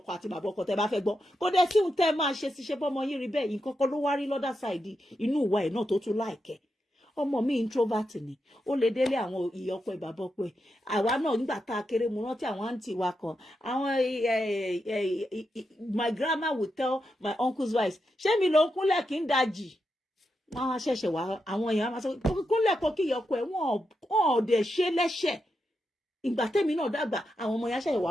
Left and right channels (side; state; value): both; normal; correlation 0.86